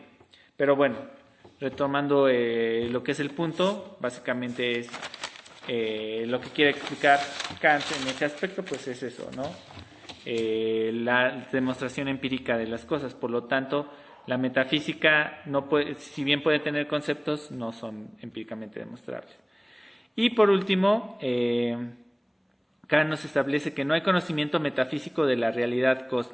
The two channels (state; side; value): identical; both; correlation 1.00